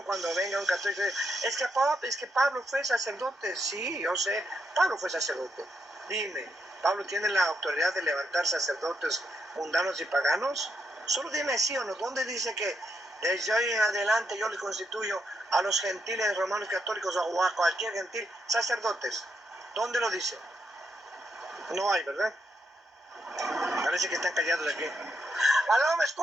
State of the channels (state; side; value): normal; both; correlation 0.80